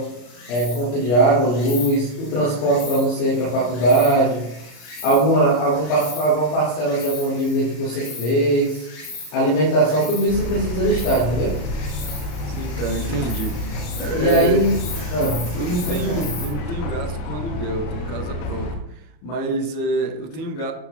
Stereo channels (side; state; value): right; late; 34 ms